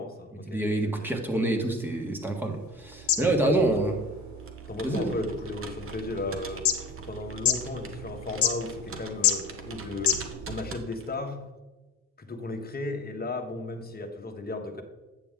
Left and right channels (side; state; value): both; normal; correlation 0.38